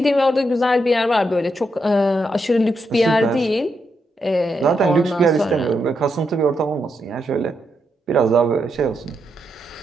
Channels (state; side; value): normal; both; correlation 0.82